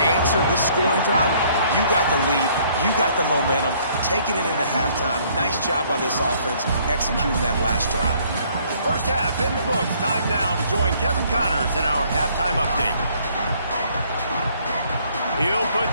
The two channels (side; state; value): both; inverted; correlation -0.62